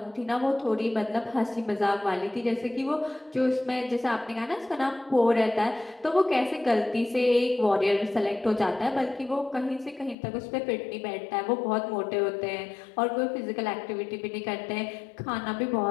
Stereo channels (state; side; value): drops out; right; at 10.2 s